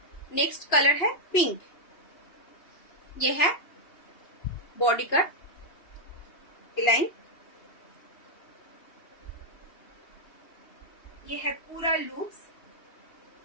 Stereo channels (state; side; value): late; right; 2.9 ms